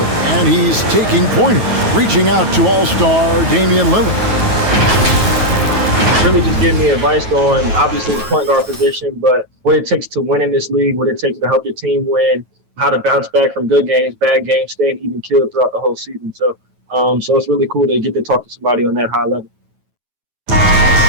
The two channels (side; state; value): left; late; 9.2 ms